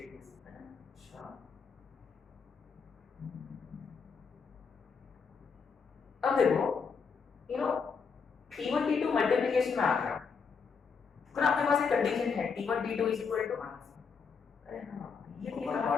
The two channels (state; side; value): quieter; right; 5.7 dB